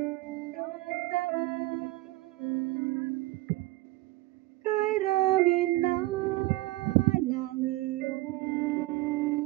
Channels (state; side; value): quieter; left; 19.1 dB